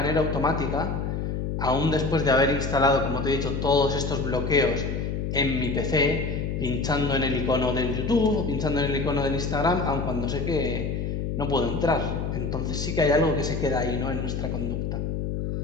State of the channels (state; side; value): noise; left; hum, 2 dB below the sound